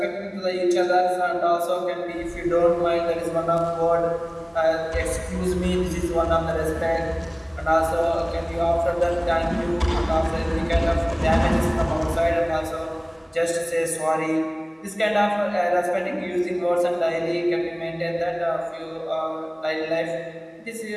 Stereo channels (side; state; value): both; identical; correlation 1.00